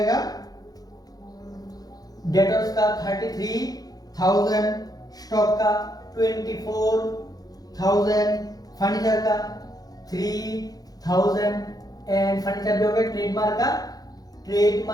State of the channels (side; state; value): right; late; 0.18 ms